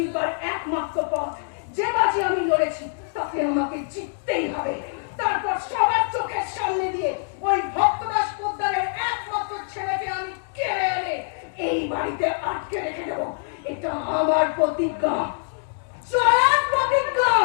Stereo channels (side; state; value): right; silent; digital silence